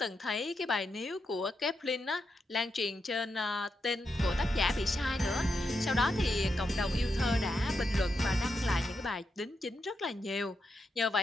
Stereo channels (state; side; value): normal; both; correlation 0.84